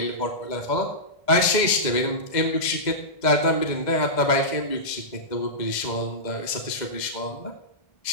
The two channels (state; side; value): late; right; 2.0 ms